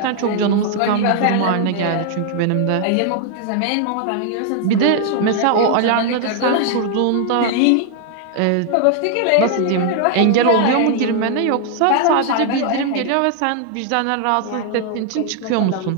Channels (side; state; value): both; different; correlation 0.00